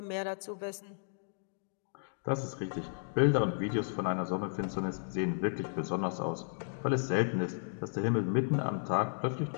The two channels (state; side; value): silent; right; digital silence